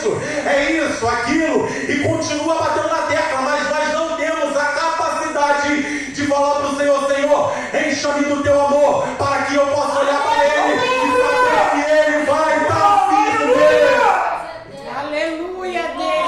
é isso, aquilo, e continua batendo na tecla, mas nós não temos a capacidade de falar para o Senhor: Senhor, encha-me do teu amor, para que eu possa olhar para Ele e saber que Ele vai estar firme.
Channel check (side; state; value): both; identical; correlation 1.00